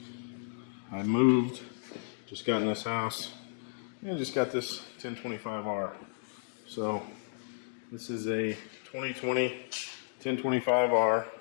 I moved, just got in this house, and just got this 1025R. So this is a 2020 1025R.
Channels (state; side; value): silent; right; digital silence